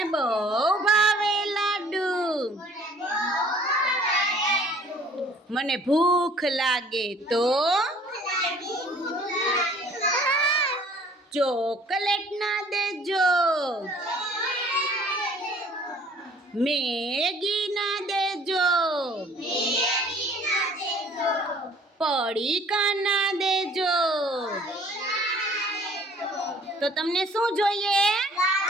બહુ ભાવે લાડુ. મને ભૂખ લાગે તો ચોકલેટ ના દેજો, મેગી ના દેજો, પડીકા ના દેજો. તો તમને શું જોઈએ?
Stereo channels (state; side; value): normal; both; correlation 0.54